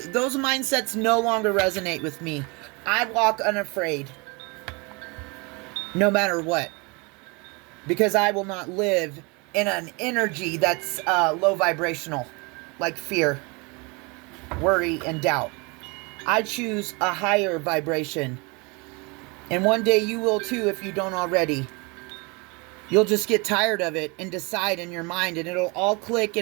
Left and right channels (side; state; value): left; quieter; 28.9 dB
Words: mindsets no longer resonate with me. I walk unafraid, no matter what, because I will not live in an energy that's low vibrational, like fear, worry, and doubt. I choose a higher vibration, and one day you will too if you don't already. You'll just get tired of it and decide in your mind, and it'll all click